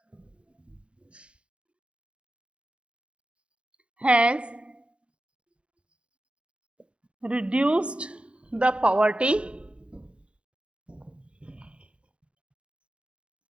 has reduced the poverty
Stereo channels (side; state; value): left; late; 0.059 ms